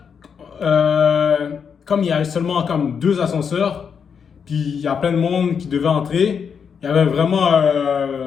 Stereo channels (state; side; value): quieter; right; 6.7 dB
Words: comme il y avait seulement comme 2 ascenseurs, puis il y a plein de monde qui devait entrer, il y avait vraiment.